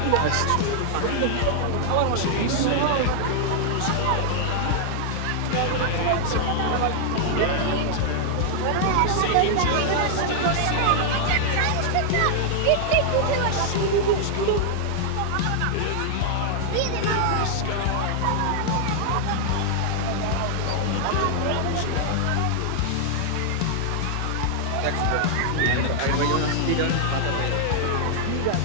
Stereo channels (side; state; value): both; different; correlation -0.01